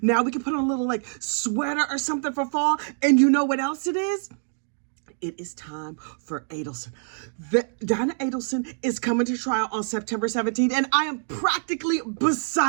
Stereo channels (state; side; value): silent; left; digital silence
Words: we can put on a little like sweater or something for fall. And you know what else it is? It is time for Adelson. Donna Adelson is coming to trial on September 17th, and I am practically